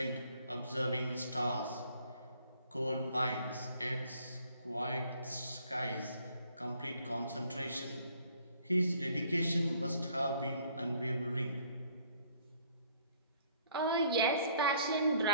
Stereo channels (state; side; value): inverted; both; correlation -0.61